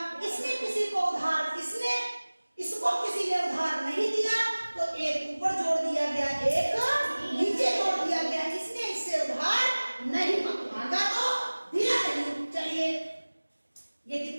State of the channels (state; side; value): inverted; both; correlation -1.00